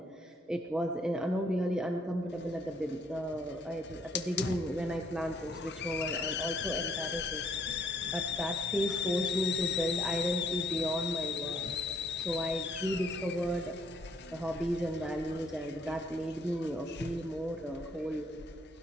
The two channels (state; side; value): normal; both; correlation 0.66